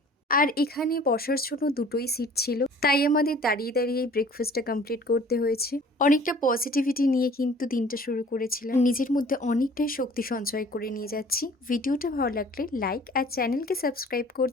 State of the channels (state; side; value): normal; both; correlation 0.50